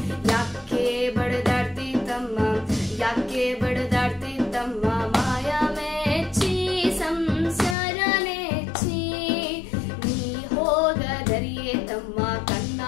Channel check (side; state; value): right; drops out; at 7.8 s